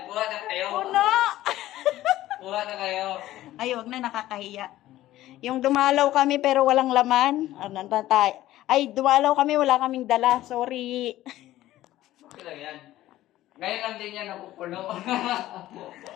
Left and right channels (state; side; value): quieter; right; 14.9 dB